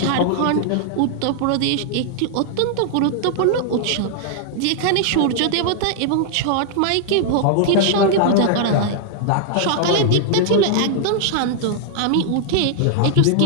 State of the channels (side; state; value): both; different; correlation -0.01